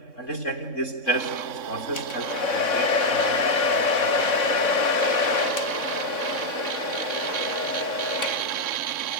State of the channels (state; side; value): late; right; 3.6 ms